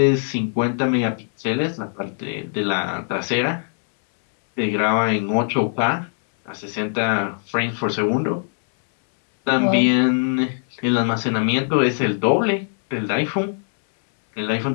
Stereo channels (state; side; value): silent; right; digital silence